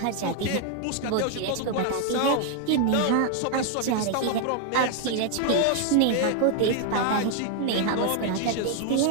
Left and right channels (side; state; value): both; different; correlation 0.00